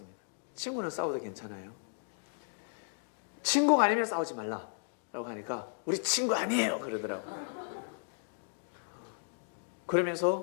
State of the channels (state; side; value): silent; right; digital silence